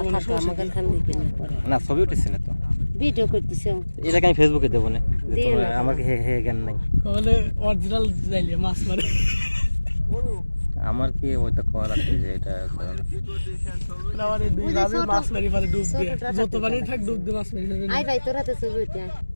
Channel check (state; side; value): inverted; both; correlation -1.00